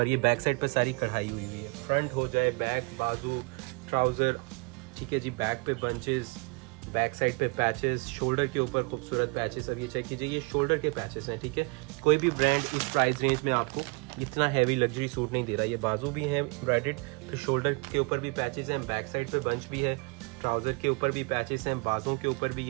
ये बैक साइड पर सारी कढ़ाई हुई है। फ्रंट हो जाए, बैक, बाजू, ट्राउज़र, ठीक है जी। बैक पे बंचेस, बैक साइड पे पैचेस, शोल्डर के ऊपर खूबसूरत पैचेस। अब ये चेक कीजिए, ये शोल्डर के पैचेस हैं, ठीक है। कोई भी ब्रांड इस प्राइस रेंज में आपको इतना हैवी लग्जरी सूट नहीं दे रहा। ये बाजू भी हैं एम्ब्रॉयडर्ड, फिर शोल्डर के ऊपर भी पैचेस हैं, बैक साइड पे बंच भी है, ट्राउज़र के ऊपर भी पैचेस हैं, बाजू के ऊपर भी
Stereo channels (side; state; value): left; quieter; 30.0 dB